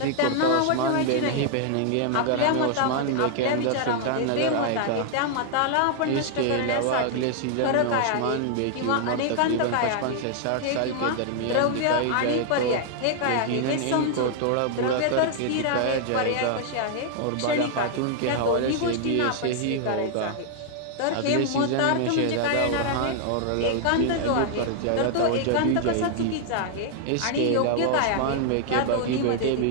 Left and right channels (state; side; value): different; both; correlation 0.00